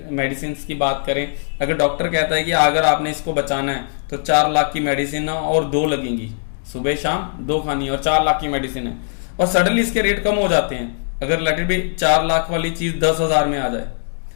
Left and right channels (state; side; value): silent; right; digital silence